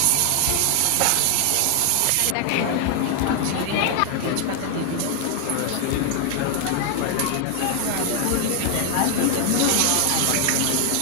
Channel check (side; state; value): both; different; correlation 0.00